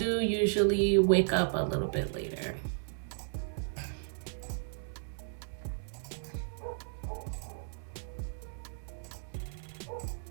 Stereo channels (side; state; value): left; silent; 55 dB below the other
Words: usually wake up a little bit later.